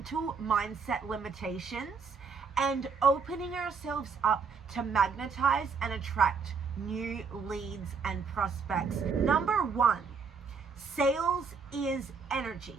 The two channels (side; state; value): left; quieter; 5.3 dB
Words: mindset limitations, and opening ourselves up to magnetize and attract new leads and prospects. #1, sales is